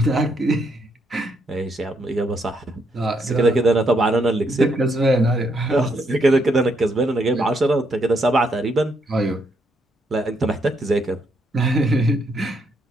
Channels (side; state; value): both; normal; correlation 0.75